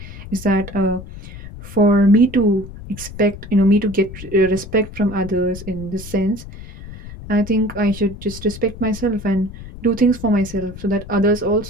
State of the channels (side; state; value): left; noise; rumble, 13 dB below the sound